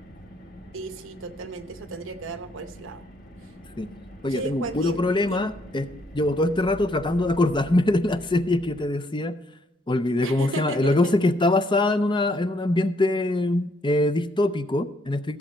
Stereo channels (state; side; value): normal; both; correlation 0.70